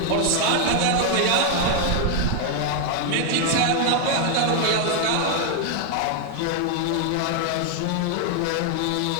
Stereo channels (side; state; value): both; different; correlation 0.00